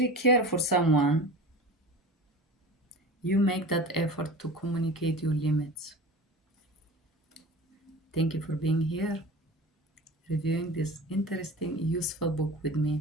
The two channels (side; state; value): both; normal; correlation 0.35